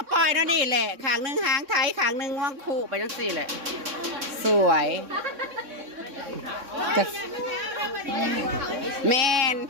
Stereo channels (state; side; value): late; left; 3.6 ms